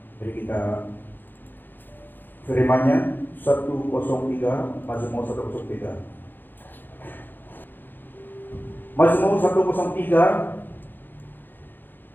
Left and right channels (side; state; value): right; late; 0.092 ms